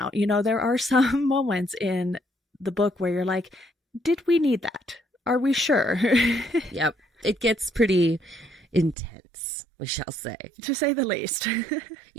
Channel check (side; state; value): left; drops out; at 9.0 s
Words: There are some moments in the book where you're like, did we need that? Are we sure? Yep. It gets pretty intense, we shall say. To say the least.